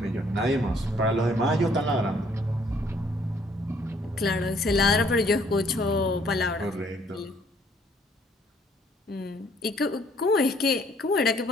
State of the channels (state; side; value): normal; both; correlation 0.63